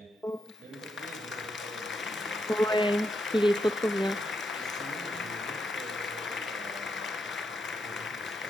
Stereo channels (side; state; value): both; normal; correlation 0.82